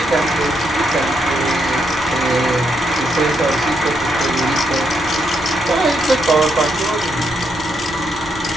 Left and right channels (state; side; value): normal; both; correlation 0.78